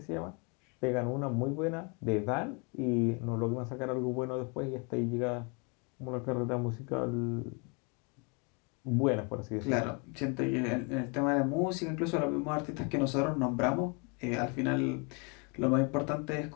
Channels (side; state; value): right; quieter; 33.7 dB